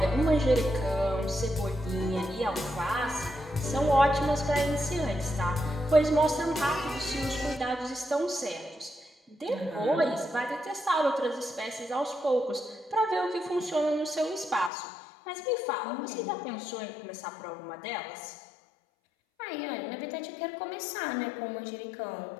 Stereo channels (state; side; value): drops out; right; at 14.7 s